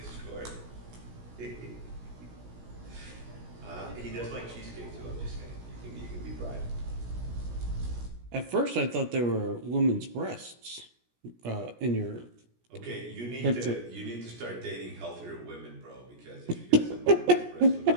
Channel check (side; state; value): left; late; 17 ms